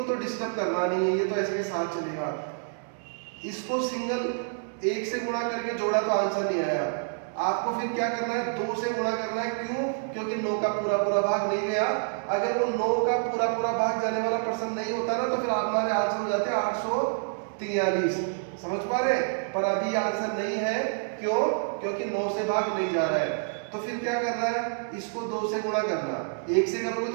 तो डिस्टर्ब करना नहीं है, ये तो ऐसे के साथ चलेगा। इसको सिंगल 1 से गुणा करके जोड़ा तो आंसर नहीं आया, आपको फिर क्या करना है, 2 से गुणा करना है। क्यों? क्योंकि 9 का पूरा पूरा भाग नहीं गया। अगर वो 9 का पूरा पूरा भाग जाने वाला प्रश्न नहीं होता ना, तो फिर हमारे आंसर हो जाते 843। समझ पा रहे? पर अभी आंसर नहीं है, क्यों? क्योंकि 9 से भाग नहीं जा रहा है। तो फिर क्या करना है, इसको 2 से गुणा करना। 1 से करोगे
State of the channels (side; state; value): left; silent; digital silence